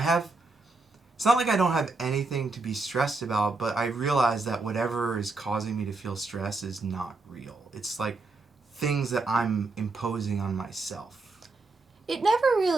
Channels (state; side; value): quieter; left; 3.5 dB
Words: it's not like I don't have anything to be stressed about, but I realize that whatever is causing me to feel stress is not real. It's like things that I'm imposing on myself. It never